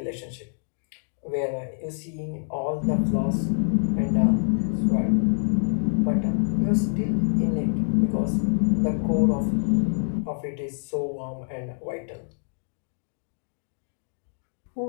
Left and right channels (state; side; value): silent; right; digital silence